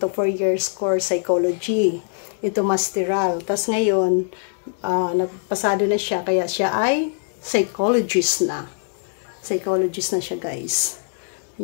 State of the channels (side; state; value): right; silent; 64 dB below the other